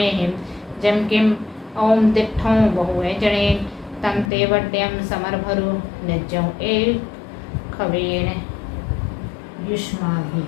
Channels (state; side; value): drops out; right; at 4.3 s